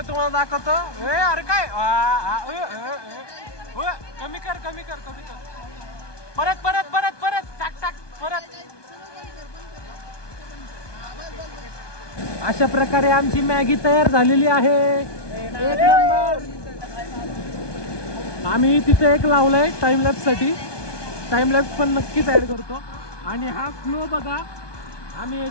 तुम्हाला दाखवतो. अरे काय कमी कर कमी कर कमी कर. परत परत परत परत टाक टाक परत. अशा प्रकारे आमची मॅगी तयार झालेली आहे. एक नंबर. आम्ही तिथे एक लावलाय टाइमलॅप्स साठी. टाइमलॅप्स पण नक्कीच ऍड करतो. आणि हा फ्लो बघा, आम्ही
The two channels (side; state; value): right; late; 1.2 ms